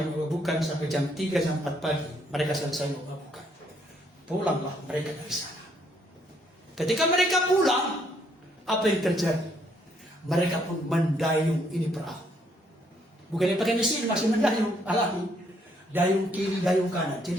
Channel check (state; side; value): normal; both; correlation 0.70